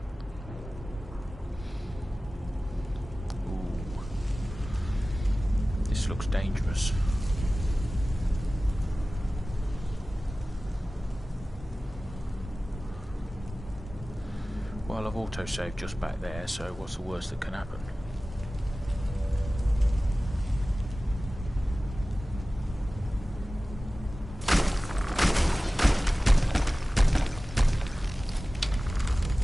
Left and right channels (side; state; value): both; normal; correlation 0.97